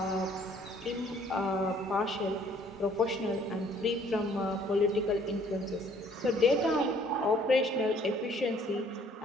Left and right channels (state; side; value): normal; both; correlation 0.59